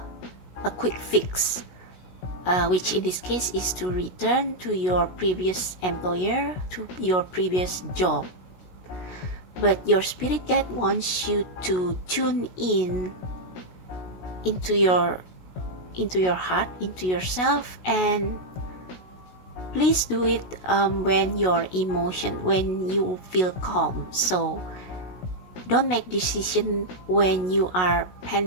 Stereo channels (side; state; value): right; late; 16 ms